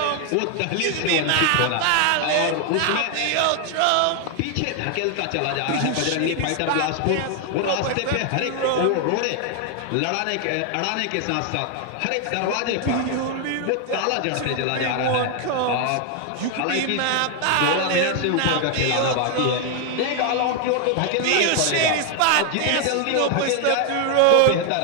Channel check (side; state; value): both; different; correlation 0.00